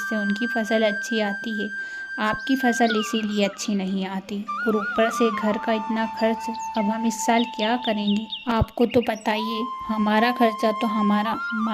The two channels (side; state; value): both; identical; correlation 1.00